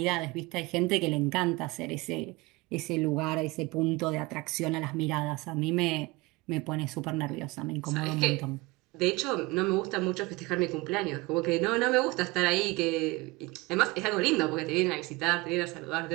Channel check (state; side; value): quieter; left; 23.3 dB